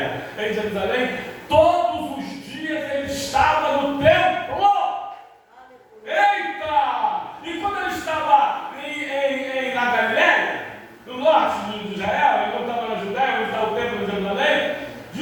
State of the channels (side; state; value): both; identical; correlation 1.00